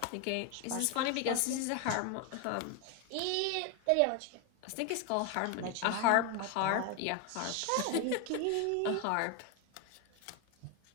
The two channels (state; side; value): different; both; correlation 0.01